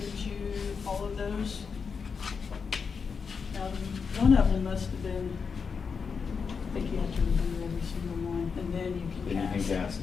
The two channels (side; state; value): right; quieter; 5.7 dB